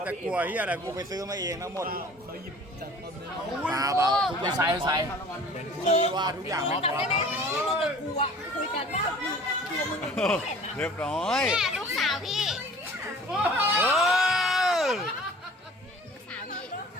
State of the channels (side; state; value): both; normal; correlation 0.46